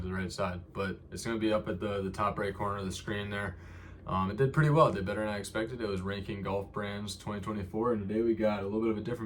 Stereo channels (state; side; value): identical; both; correlation 1.00